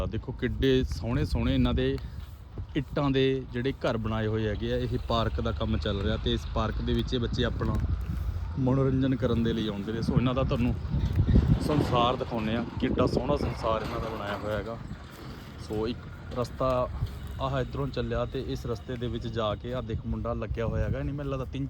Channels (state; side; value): identical; both; correlation 1.00